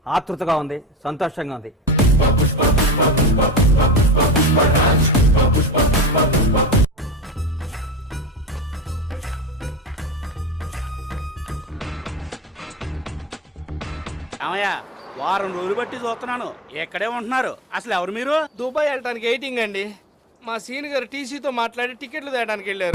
ఆతృతగా ఉంది, సంతోషంగా ఉంది. ఏమయ్య, వారం రోజులు బట్టి చూస్తున్నాను, ఎక్కడే ఉంటున్నారు? అసలు ఎవరు మీరు? దుబాయ్ వెళ్ళడానికి వెయిటింగ్ అండి. మా సీన్ గారు టీసీతో మాట్లాడి టికెట్లు తేయడానికి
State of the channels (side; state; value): both; normal; correlation 0.28